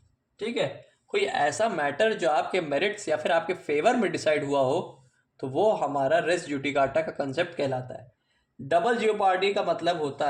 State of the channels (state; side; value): identical; both; correlation 1.00